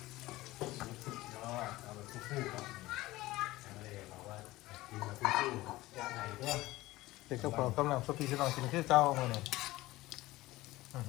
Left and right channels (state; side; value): quieter; right; 18.2 dB